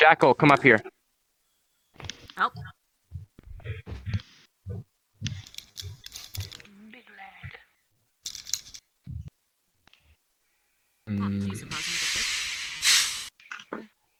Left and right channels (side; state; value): both; identical; correlation 1.00